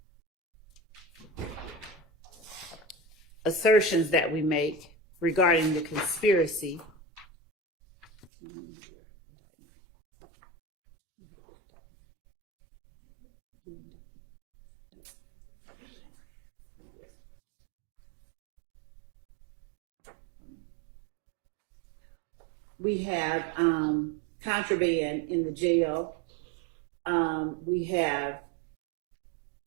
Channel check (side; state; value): left; drops out; at 8.3 s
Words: assertions that we make regarding the conspiracy. We have contraband in the jail. We have